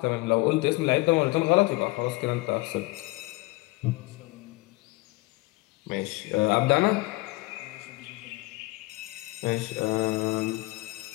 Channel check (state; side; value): quieter; right; 22.1 dB